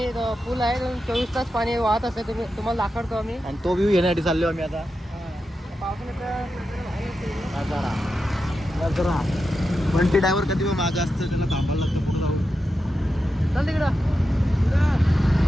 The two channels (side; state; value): both; normal; correlation 0.89